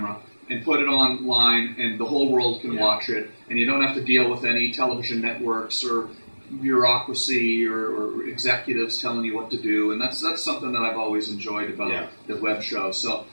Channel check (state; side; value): inverted; both; correlation -1.00